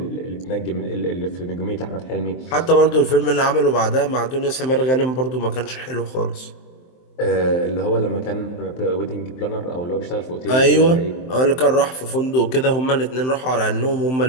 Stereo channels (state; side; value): late; right; 23 ms